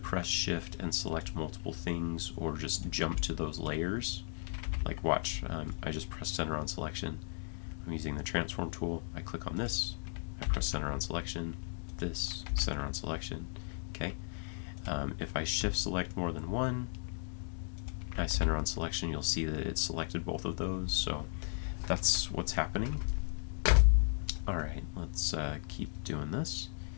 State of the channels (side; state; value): right; silent; digital silence